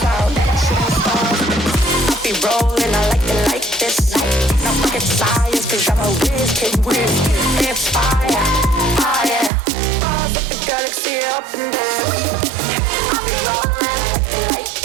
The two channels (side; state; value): left; drops out; at 9.5 s